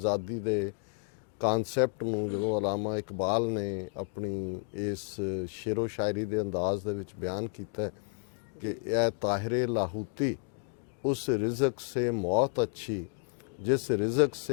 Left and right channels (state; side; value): quieter; right; 37.4 dB